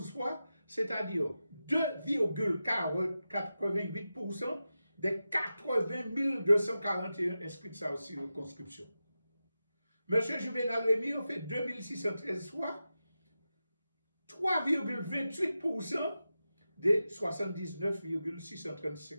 voix, c'est-à-dire 2,88% des 80 241 inscrits de sa circonscription. M. Juvenal Rémy a fait 2613 fois, 3,28% des 79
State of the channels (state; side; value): inverted; both; correlation -0.92